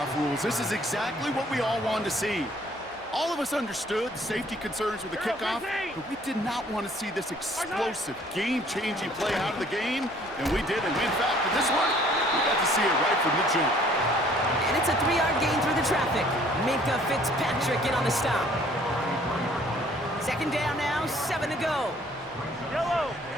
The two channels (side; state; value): both; normal; correlation 0.58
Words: rules. This is exactly what we all wanted to see. All of us understood the safety concerns with the kickoff, but we did not want to see this explosive, game-changing play out of the game, and we did. And in fact, for this one, we got to see it right from the jump. And it's a 3-yard gain through the traffic. Minka Fitzpatrick in on the stop. Second down now, 7 to go. Yellow.